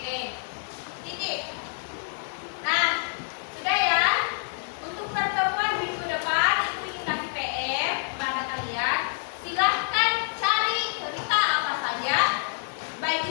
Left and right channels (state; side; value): silent; right; 60 dB below the other